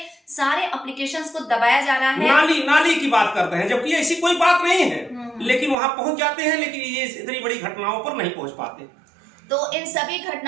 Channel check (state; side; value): drops out; left; at 5.8 s